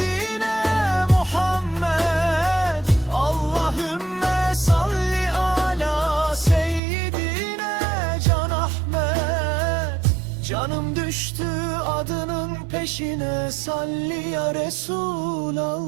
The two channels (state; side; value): drops out; left; at 6.8 s